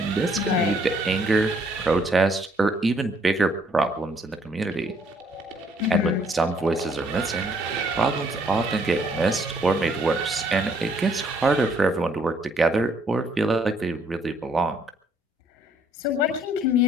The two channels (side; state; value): both; normal; correlation 0.66